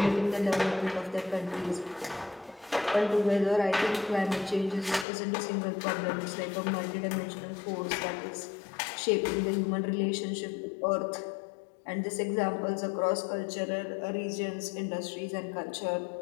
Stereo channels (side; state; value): right; drops out; at 5.1 s